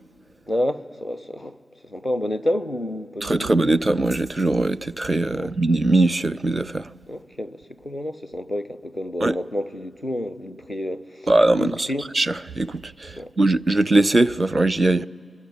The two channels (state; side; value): normal; both; correlation 0.93